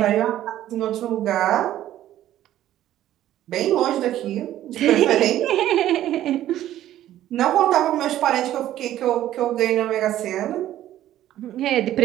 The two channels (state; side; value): quieter; left; 12.9 dB